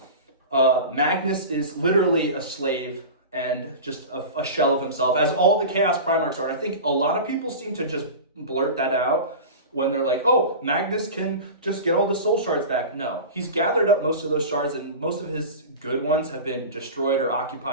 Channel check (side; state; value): both; inverted; correlation -0.31